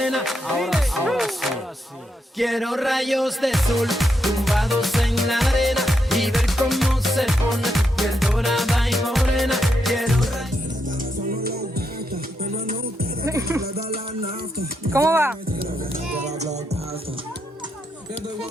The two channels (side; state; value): both; normal; correlation 0.82